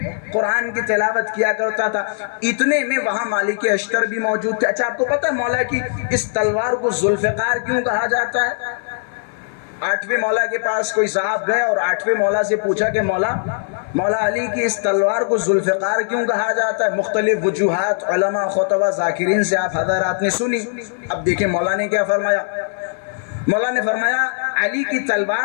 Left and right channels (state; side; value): silent; right; digital silence